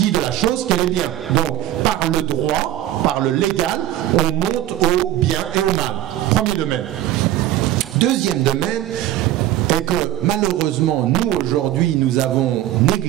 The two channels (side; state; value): left; quieter; 13.1 dB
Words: de la chose qu'elle est bien. Donc par le droit, par le légal, on monte au bien et au mal. Premier domaine. Deuxième domaine est que malheureusement nous aujourd'hui nous avons